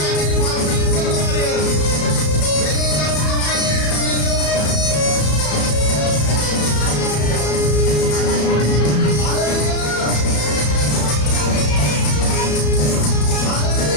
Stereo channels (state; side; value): late; right; 34 ms